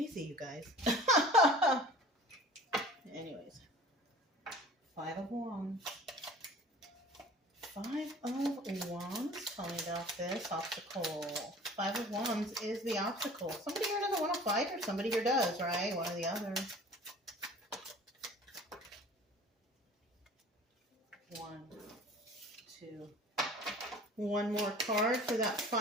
you guys. Anyways. Five of Wands. Five of Wands. Tell me about this obstacle. Five of Wands is the obstacle. Somebody here doesn't want to fight, or somebody here does, right? One or the other. One, two. One more card for that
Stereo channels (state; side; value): normal; both; correlation 0.45